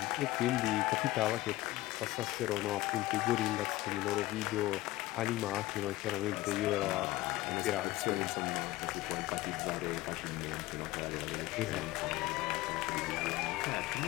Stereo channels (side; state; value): right; quieter; 17.8 dB